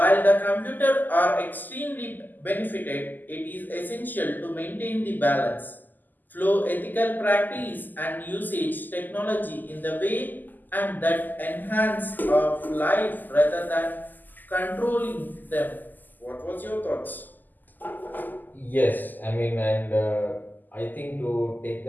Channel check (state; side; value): late; right; 0.086 ms